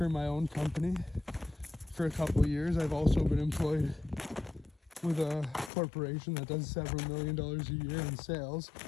my own company for a couple of years. I've also been employed with a corporation that does several $1 million a year in sales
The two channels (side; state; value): right; drops out; at 5.7 s